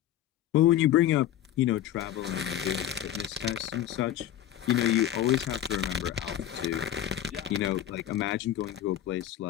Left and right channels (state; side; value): quieter; right; 11.6 dB